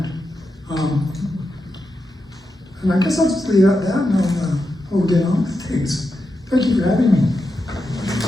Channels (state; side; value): normal; both; correlation 0.87